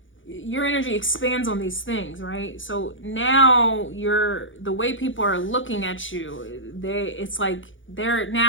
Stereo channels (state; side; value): late; right; 0.56 ms